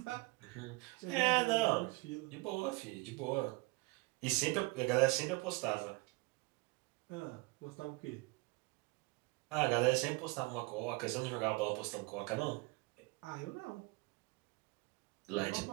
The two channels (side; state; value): left; quieter; 25.8 dB